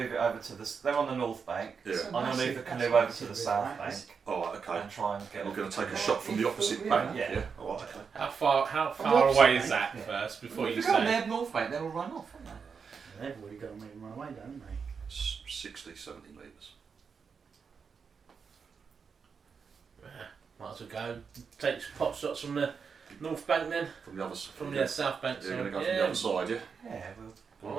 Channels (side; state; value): left; quieter; 5.9 dB